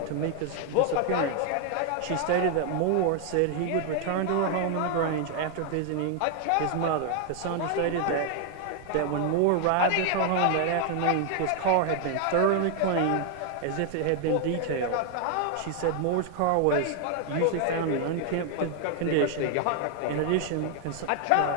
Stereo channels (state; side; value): different; both; correlation 0.00